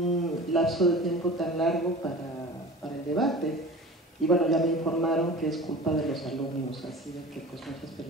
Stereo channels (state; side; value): normal; both; correlation 0.37